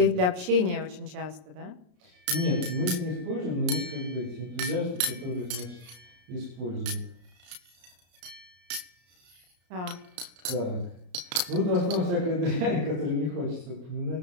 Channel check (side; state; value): left; late; 33 ms